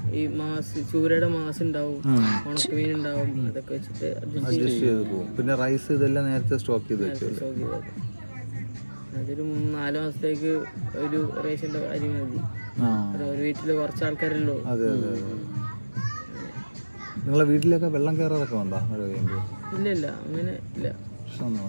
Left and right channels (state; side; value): inverted; both; correlation -1.00